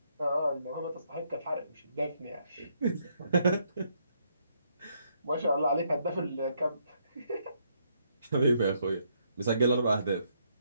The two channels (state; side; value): inverted; both; correlation -0.74